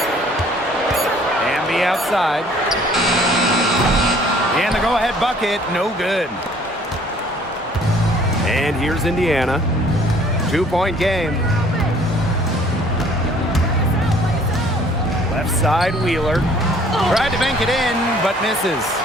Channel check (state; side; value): normal; both; correlation 0.57